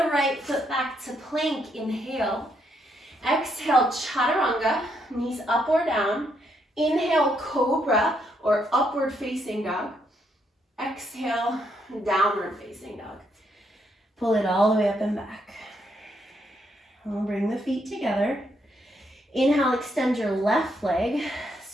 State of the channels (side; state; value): both; normal; correlation 0.75